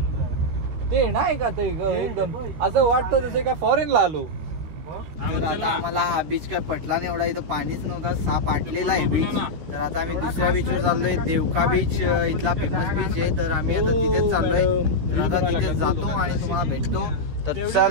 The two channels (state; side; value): late; left; 13 ms